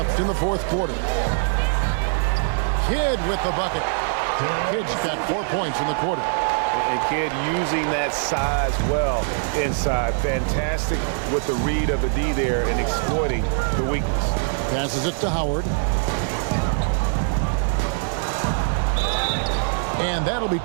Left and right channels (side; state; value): left; silent; digital silence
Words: in the fourth quarter. Kidd with the bucket. Kidd's got 4 points in the quarter. And Kidd using that size well inside. Fantastic with the read of the D there and exploiting the weakness. Passes it to Howard. And that'll be